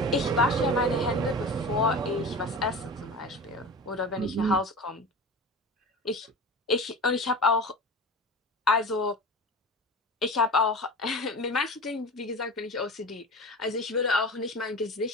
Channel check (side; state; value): both; normal; correlation 0.32